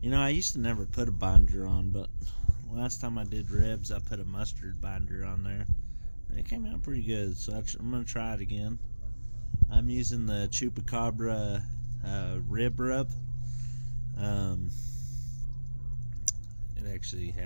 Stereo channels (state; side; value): inverted; both; correlation -1.00